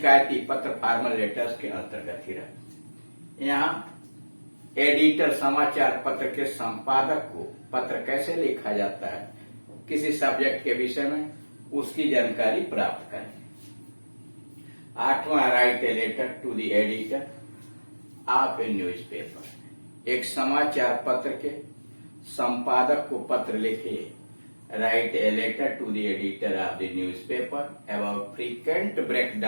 पत्र फॉर्मल लेटर्स के अंतर्गत ही रहते हैं। यहाँ एडिटर समाचार पत्र के संपादक को पत्र कैसे लिखा जाता है, किसी सब्जेक्ट के विषय में, उसकी जानकारी प्राप्त करें। 8वां, write a letter to the editor of a newspaper. एक समाचार पत्र के संपादक को पत्र लिखिए। Write a letter to the editor of the newspaper about frequent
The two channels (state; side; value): inverted; both; correlation -1.00